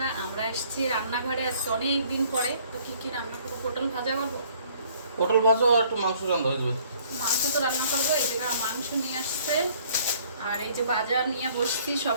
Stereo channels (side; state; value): both; inverted; correlation -0.59